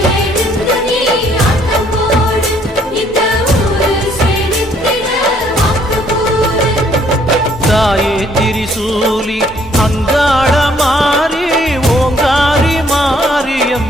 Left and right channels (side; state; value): both; normal; correlation 0.64